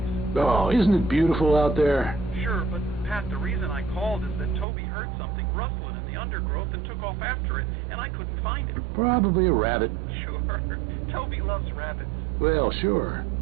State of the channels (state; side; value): drops out; left; at 4.7 s